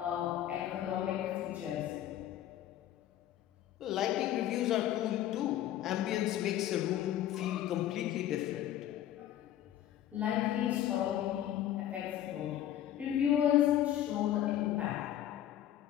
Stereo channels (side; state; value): right; quieter; 12.0 dB